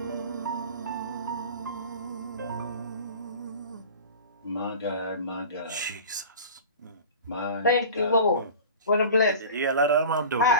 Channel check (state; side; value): inverted; both; correlation -0.37